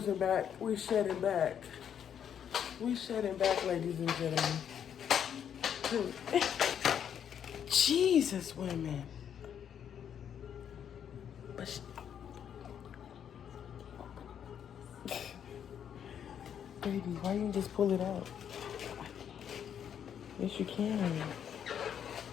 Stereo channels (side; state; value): right; quieter; 8.7 dB